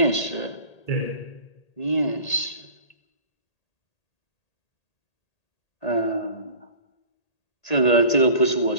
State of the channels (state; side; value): late; right; 1.8 ms